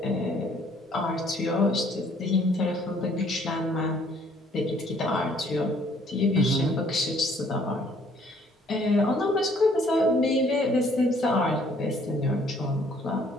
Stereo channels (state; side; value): normal; both; correlation 0.61